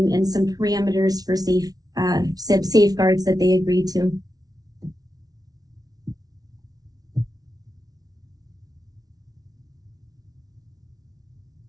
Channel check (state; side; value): late; left; 0.18 ms